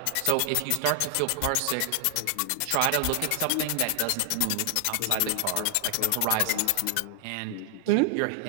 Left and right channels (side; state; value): both; different; correlation 0.00